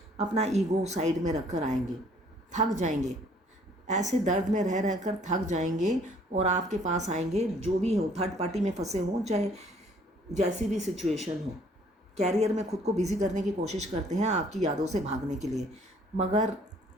अपना ईगो साइड में रखकर आएंगे, थक जाएंगे, ऐसे दर्द में रह रहकर थक जाएंगे और आपके पास आएंगे। जो भी हो, थर्ड पार्टी में फंसे हों, चाहे जैसी भी सिचुएशन हो, कैरियर में खुद को बिजी करने की कोशिश करते हैं आपकी यादों से भागने के लिए, मगर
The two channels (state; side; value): normal; both; correlation 0.59